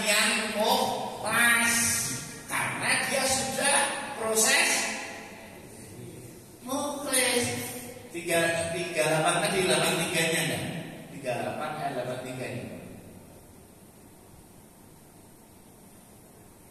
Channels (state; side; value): identical; both; correlation 1.00